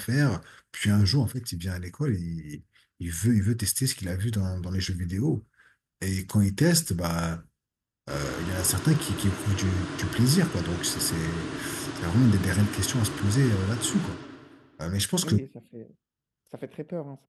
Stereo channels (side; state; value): both; identical; correlation 1.00